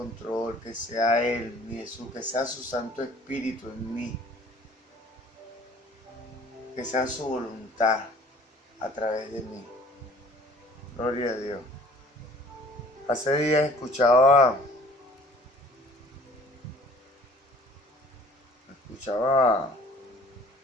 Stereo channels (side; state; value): both; normal; correlation 0.52